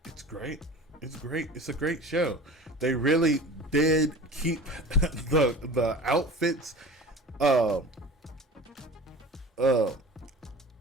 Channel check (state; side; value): normal; both; correlation 0.38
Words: it's great. It's great. It's a great show. They really did keep the outfits